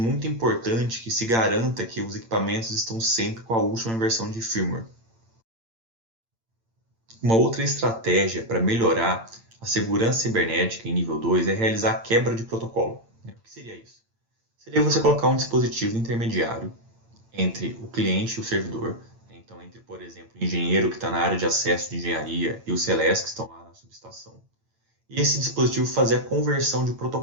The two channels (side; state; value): left; late; 8.8 ms